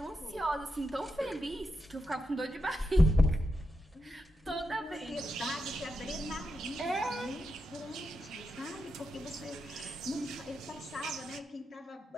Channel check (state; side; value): normal; both; correlation 0.85